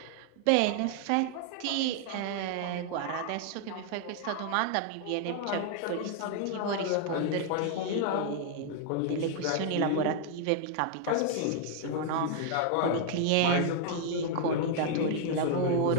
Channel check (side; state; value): both; different; correlation 0.00